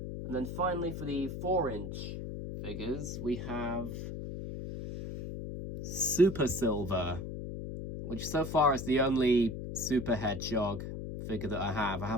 then finally, for the 4-inch figures, we have Super Silver, which so far is the only Super Hedgehog figure that I have. I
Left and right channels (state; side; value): noise; left; hum, 6 dB below the sound